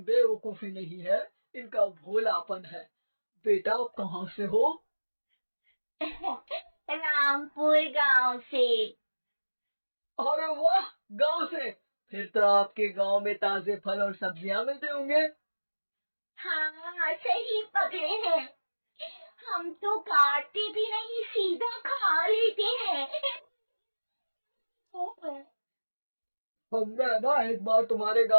बेवकूफी नहीं है, इनका भोलापन है। बेटा आप कहाँ से हो? रामपुर गांव से। अरे वाह, गांव से? फिर तो आपके गांव में ताजे फल और सब्जियां मिलते होंगे। हाँ सही पकड़े हैं, हम तो काटते भी नहीं, सीधा खा लेते हैं। हम ना एक बार तुम्हारे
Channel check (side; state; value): both; inverted; correlation -1.00